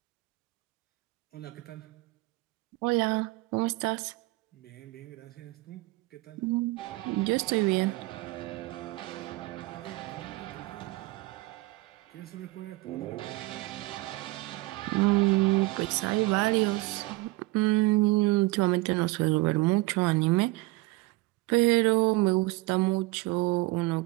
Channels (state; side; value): quieter; left; 21.1 dB